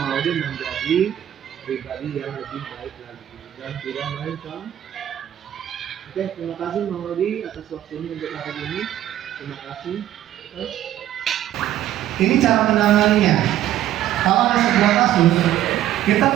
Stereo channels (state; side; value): quieter; left; 12.2 dB